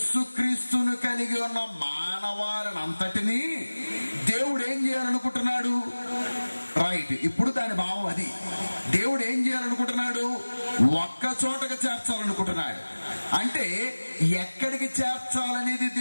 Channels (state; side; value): inverted; both; correlation -1.00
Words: కలిగి ఉన్న మానవాళిని అంతటినీ దేవుడు ఏం చేయాలనుకుంటున్నాడు? రైట్, ఇప్పుడు దాని భావం అది. దేవుడు ఏం చేయాలనుకుంటున్నాడు? ఒక్క చోటకి చేర్చాలనుకుంటున్నాడు. అంటే ఎక్కడికి చేర్చాలనేది